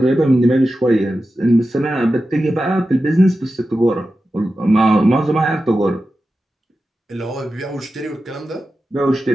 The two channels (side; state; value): both; normal; correlation 0.92